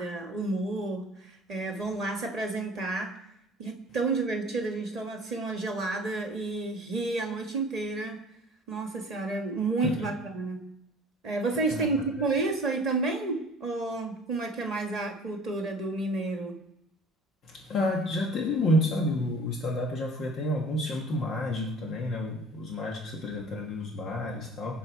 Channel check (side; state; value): both; normal; correlation 0.47